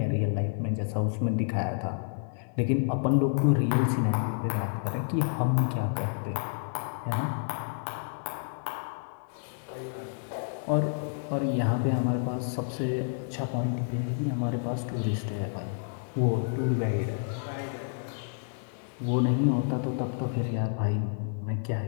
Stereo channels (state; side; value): silent; right; 58 dB below the other